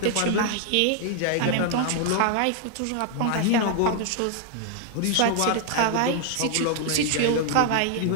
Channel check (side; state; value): both; different; correlation 0.00